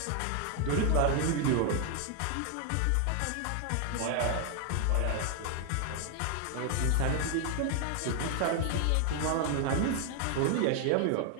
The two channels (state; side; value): different; both; correlation 0.00